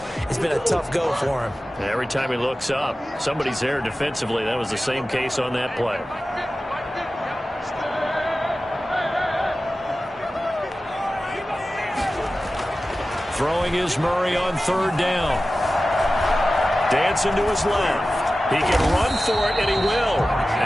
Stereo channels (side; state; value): both; normal; correlation 0.95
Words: it's been a tough go for him. Every time he looks up, somebody's there defensively. That was the same case on that play. Throwing is Murray on 3rd down. Dancing to his left. He can run for it, and he will.